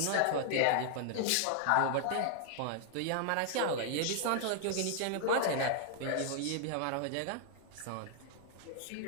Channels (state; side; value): different; both; correlation -0.01